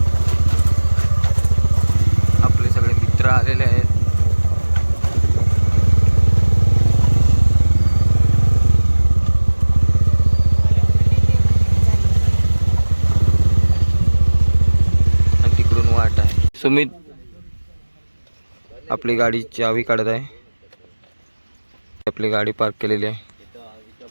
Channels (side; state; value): both; inverted; correlation -1.00